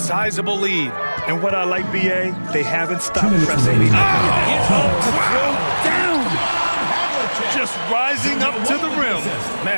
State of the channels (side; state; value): both; inverted; correlation -1.00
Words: lead. And what I like, BA, they haven't stopped pressing. Just rising up to the rim.